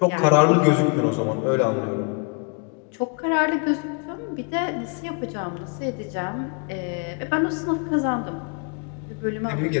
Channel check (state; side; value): quieter; right; 36.6 dB